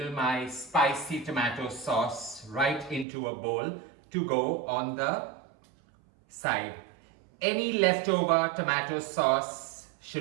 my spicy tomato sauce right into a bowl to go on the side. Any leftover tomato sauce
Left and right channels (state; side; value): drops out; left; at 3.1 s